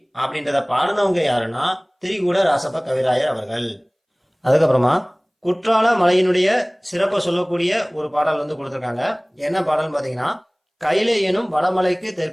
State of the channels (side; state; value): both; identical; correlation 1.00